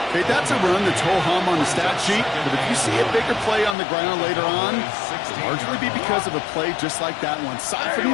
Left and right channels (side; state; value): right; drops out; at 3.8 s